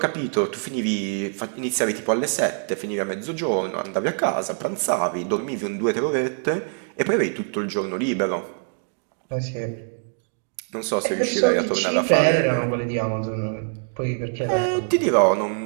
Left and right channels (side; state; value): left; silent; 63 dB below the other